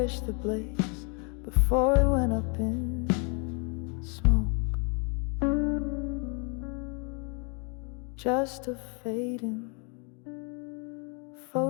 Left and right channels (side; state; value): right; quieter; 35.6 dB